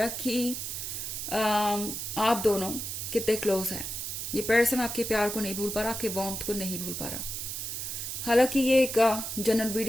कि आप दोनों कितने क्लोज हैं। ये पर्सन आपके प्यार को नहीं भूल पा रहा, आपके वार्मथ को नहीं भूल पा रहा। हालांकि ये एक जनरल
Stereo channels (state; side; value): noise; right; hiss, 5 dB below the sound